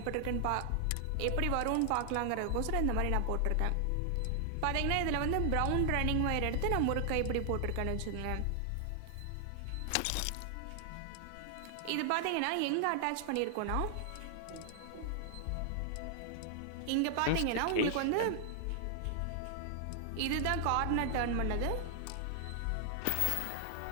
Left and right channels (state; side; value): different; both; correlation 0.00